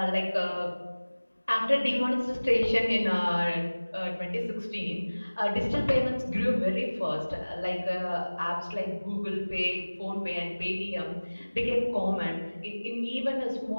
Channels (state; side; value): inverted; both; correlation -1.00